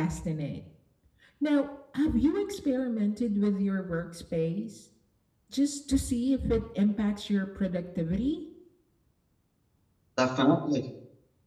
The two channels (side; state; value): both; identical; correlation 1.00